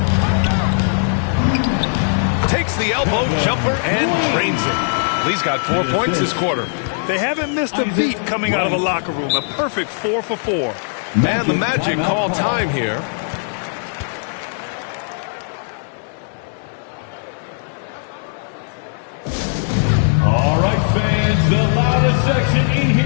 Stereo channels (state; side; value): silent; right; digital silence